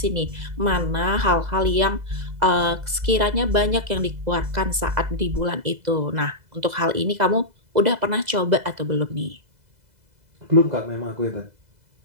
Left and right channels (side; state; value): left; late; 2.0 ms